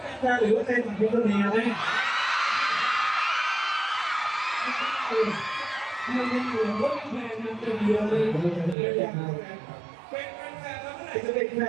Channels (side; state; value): left; drops out; at 8.8 s